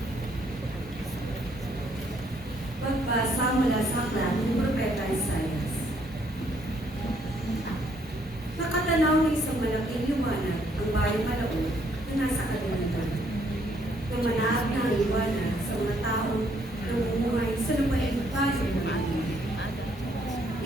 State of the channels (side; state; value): both; normal; correlation 0.68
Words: Pagbasa mula sa aklat ng Propeta Isaías. Nakatanaw ng isang malaking liwanag ang bayang Malaon na nasa kadiliman. Lumanaag na ang liwanag sa mga taong namumuhay sa lupaing bayan ng Atin.